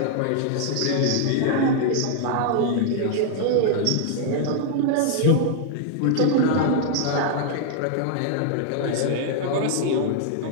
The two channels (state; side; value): different; both; correlation -0.01